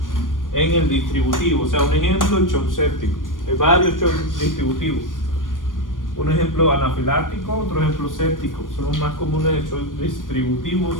en el distributivo. O sea, un ejemplo, el shock séptico. Hay varios shocks distributivos. Un ejemplo anafiláctico, otro ejemplo séptico. Son los más comunes de shocks distributivos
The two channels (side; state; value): right; late; 0.89 ms